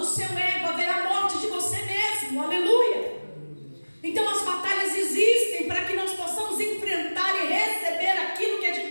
seu ego, haverá morte de você mesmo, aleluia. Então as batalhas existem para que nós possamos enfrentar e receber aquilo que é de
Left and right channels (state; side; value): inverted; both; correlation -1.00